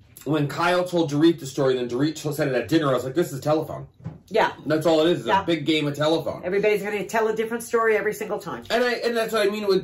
when Kyle told Dorit the story, then Dorit said it at dinner, I was like, this is a telephone. Yeah. That's all it is. It's a big game of telephone. Everybody's going to tell a different story every single time. And that's what I mean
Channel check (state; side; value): identical; both; correlation 1.00